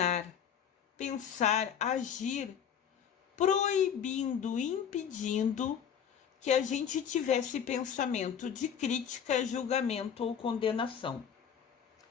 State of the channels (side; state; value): right; quieter; 8.2 dB